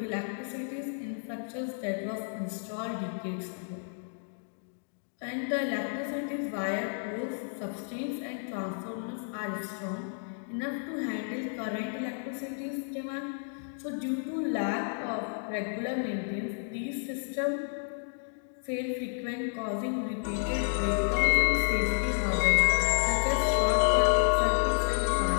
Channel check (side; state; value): right; silent; digital silence